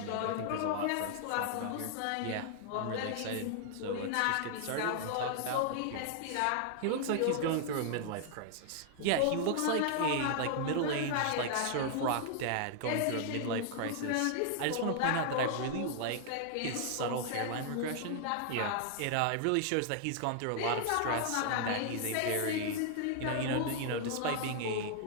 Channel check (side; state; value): both; different; correlation 0.00